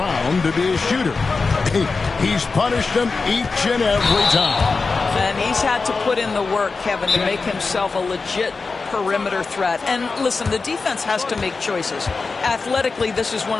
to be a shooter. He's punished them each and every time. And he's had to put in the work, Kevin, to make himself a legit perimeter threat. And listen, the defense has to make choices. Athletically, this is one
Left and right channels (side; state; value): right; quieter; 4.3 dB